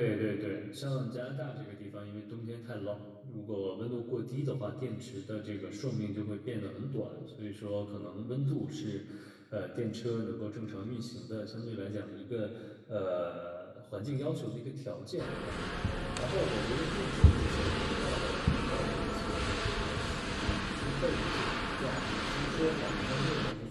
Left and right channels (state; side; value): identical; both; correlation 1.00